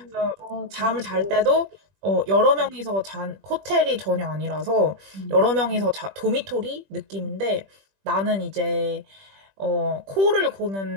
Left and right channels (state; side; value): late; left; 20 ms